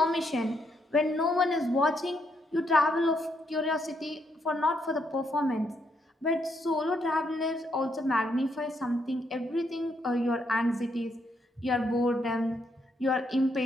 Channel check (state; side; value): normal; both; correlation 0.76